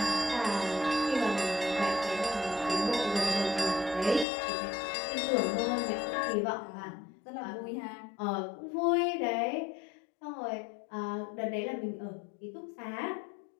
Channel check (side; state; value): right; drops out; at 4.2 s